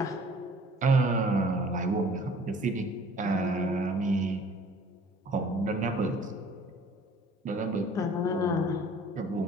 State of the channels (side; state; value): both; normal; correlation 0.52